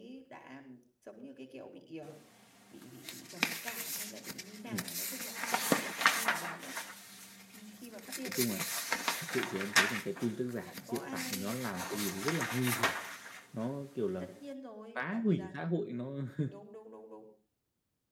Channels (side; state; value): both; identical; correlation 1.00